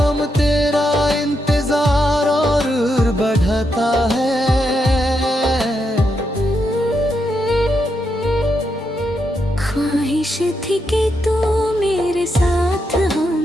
तेरा इंतजार और बढ़ता है। ख्वाहिश थी कि तू मेरे साथ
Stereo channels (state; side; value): normal; both; correlation 0.82